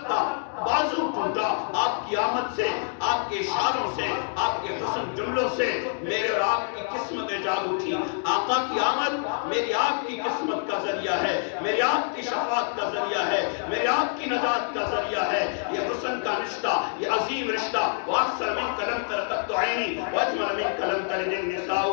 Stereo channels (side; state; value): right; silent; 61 dB below the other